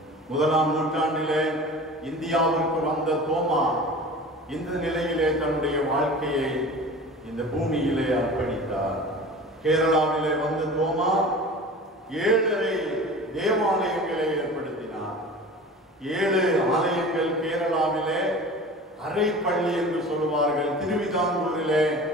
1ஆம் நூற்றாண்டிலே இந்தியாவிற்கு வந்த தோமா இந்த நிலையிலே தன்னுடைய வாழ்க்கையை இந்த பூமியிலே அர்ப்பணித்தார். கேரளாவிலே வந்த தோமா 7 தேவாலயங்களை ஏற்படுத்தினார். 7 ஆலயங்கள் கேரளாவிலே அரை பள்ளி என்று சொல்லுவார்கள். திருவிதாங்கூரிலே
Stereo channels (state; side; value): normal; both; correlation 0.38